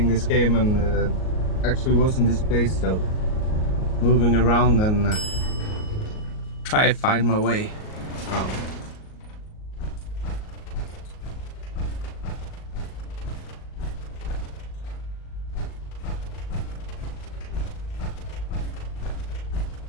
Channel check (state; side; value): late; right; 38 ms